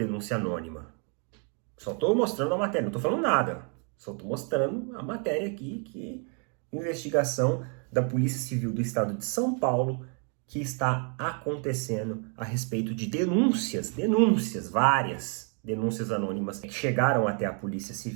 anônima. Só estou mostrando a matéria, não estou falando nada. Só estou mostrando a matéria aqui, que investigação da Polícia Civil do Estado de São Paulo que está acontecendo a respeito de várias denúncias anônimas que chegaram até a Polícia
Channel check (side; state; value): left; quieter; 39.9 dB